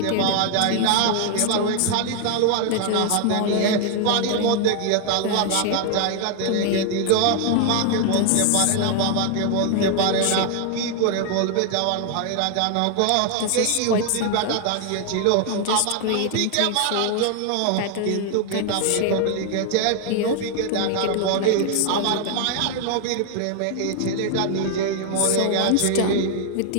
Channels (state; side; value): different; both; correlation 0.00